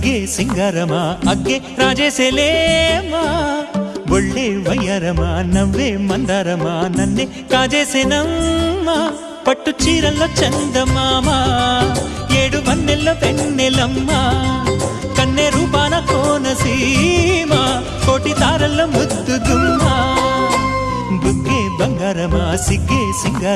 సింగారమా అగ్గే రాజేసేలేమా ఒళ్ళే వయ్యారమా నవ్వే మందారమా నన్నే కాజేసేనమ్మా పట్టు చీరల్లో చందమామా ఏడు వన్నెల్లో వెన్నెలమ్మా కన్నె రూపాన కోనసీమ కోటి తారల్లో ముద్దుగుమ్మా బుగ్గే బంగారమా సిగ్గే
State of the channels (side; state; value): both; identical; correlation 1.00